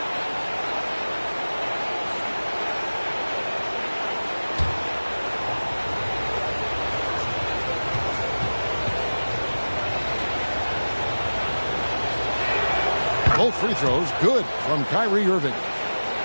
Both free throws good from Kyrie Irving.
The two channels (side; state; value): both; inverted; correlation -1.00